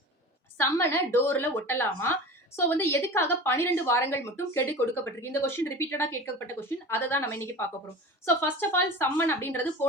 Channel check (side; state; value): both; normal; correlation 0.34